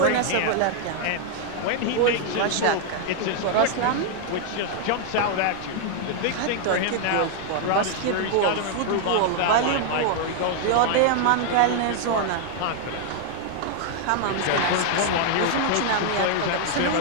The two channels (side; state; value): both; different; correlation 0.00